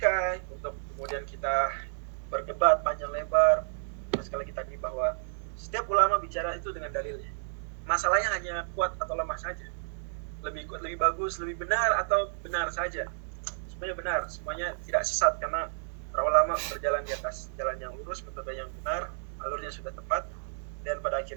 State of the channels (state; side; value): silent; left; digital silence